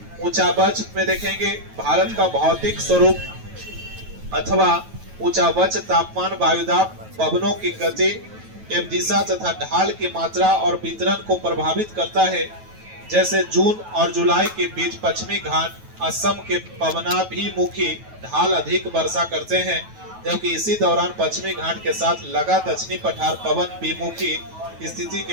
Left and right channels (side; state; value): left; late; 9.2 ms